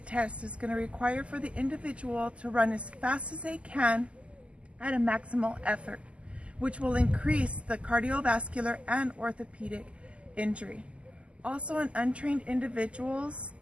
test is going to require for the individual to run as fast as they can at a maximal effort, which will increase the cardiovascular and orthopedic injury. Also, untrained individuals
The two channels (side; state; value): left; late; 0.056 ms